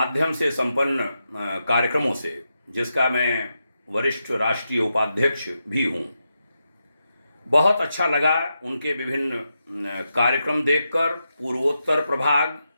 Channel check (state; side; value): inverted; both; correlation -0.87